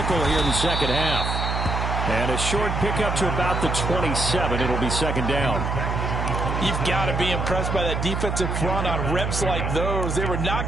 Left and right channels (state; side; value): noise; right; hum, 1 dB below the sound